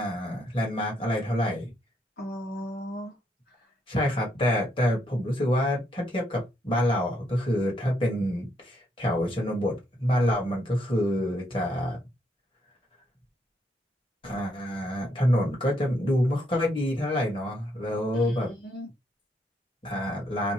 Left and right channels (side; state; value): both; normal; correlation 0.75